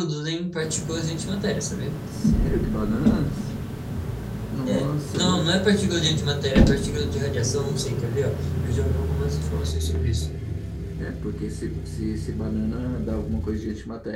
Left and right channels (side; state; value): both; identical; correlation 1.00